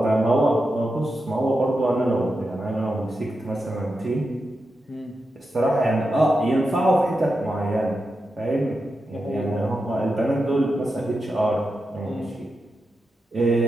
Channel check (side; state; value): both; normal; correlation 0.89